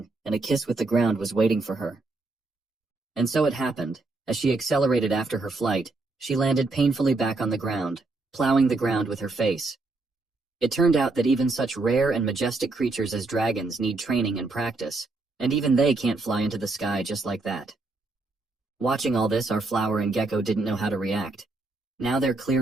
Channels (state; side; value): quieter; left; 3.4 dB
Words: and a kiss with the ground was waiting for her. And so it happened. As she accelerated after her flight, she landed painfully back on the ground, plowing the ground with her face. It turned out that even such rare and majestic creatures as dragons need training and practice, and even they can't fly into the sky just like that. Watching all this, our flower and gecko didn't know how to react. Now their